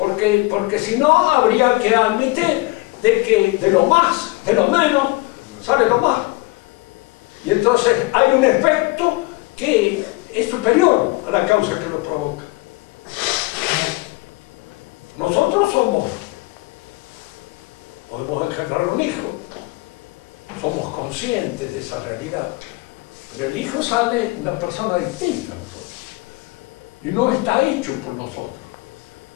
si no, habría que admitir de que de lo más, de lo menos, sale lo más. Y entonces hay un efecto que es superior a la causa que lo provoca. Nosotros podemos engendrar un hijo, somos conscientes de esa realidad, pero el hijo sale una persona distinta a nosotros y no está hecho por nosotros.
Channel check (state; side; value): quieter; right; 23.8 dB